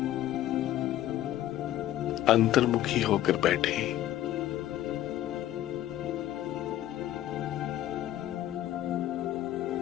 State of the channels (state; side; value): quieter; right; 13.2 dB